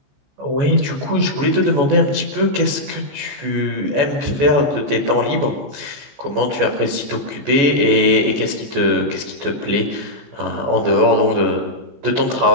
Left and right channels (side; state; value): left; late; 14 ms